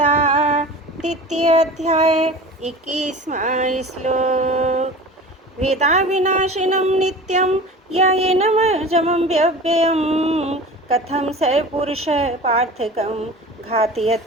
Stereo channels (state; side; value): normal; both; correlation 0.37